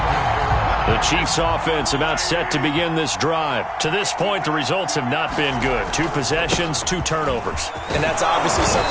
The Chiefs offense about set to begin this drive. To this point, the results have not been good. 2 possessions, 2 turnovers. And that's obviously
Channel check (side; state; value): both; identical; correlation 1.00